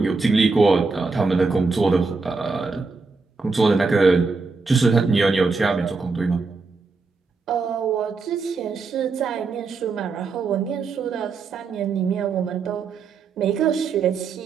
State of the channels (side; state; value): left; quieter; 4.3 dB